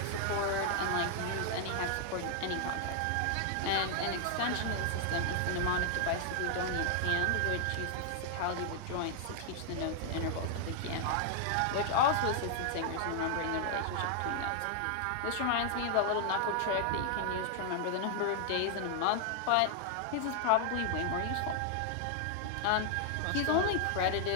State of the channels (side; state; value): both; different; correlation 0.00